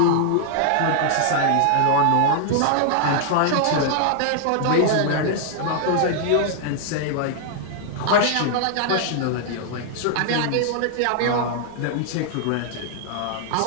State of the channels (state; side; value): different; both; correlation -0.01